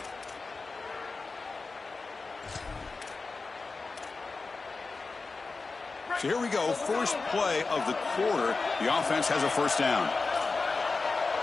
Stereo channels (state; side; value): quieter; right; 4.0 dB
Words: So here we go, first play of the quarter. The offense has a first down.